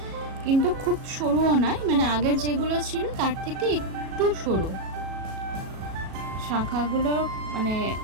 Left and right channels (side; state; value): left; late; 37 ms